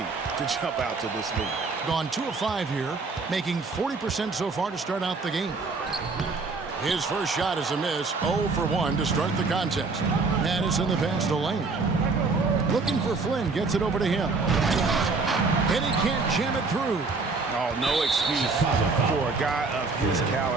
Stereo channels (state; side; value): quieter; left; 4.1 dB